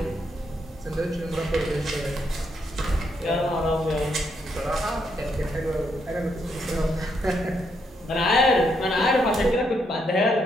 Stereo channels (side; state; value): both; normal; correlation 0.77